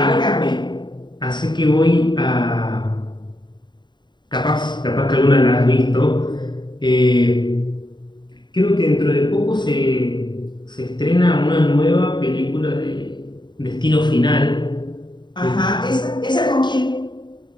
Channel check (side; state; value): right; late; 0.22 ms